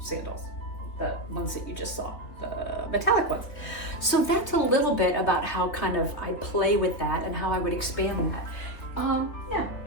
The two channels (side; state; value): right; late; 3.6 ms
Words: the ones that you just saw, the metallic ones. So that's a little bit about how kind of I play with that and how I would expand that. Yeah,